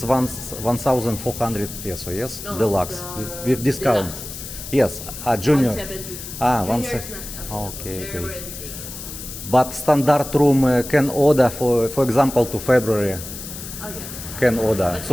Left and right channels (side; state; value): left; noise; hiss, 10 dB below the sound